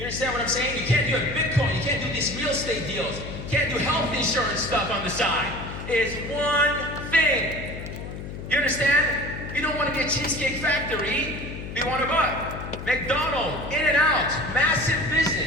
understand what I'm saying? You can't do a Bitcoin, you can't do these real estate deals, you can't do health insurance stuff on the side. It's one thing. You understand? You don't want to be a Cheesecake Factory, you want to buy McDonald's, In-N-Out, massive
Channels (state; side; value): noise; left; hum, 9 dB below the sound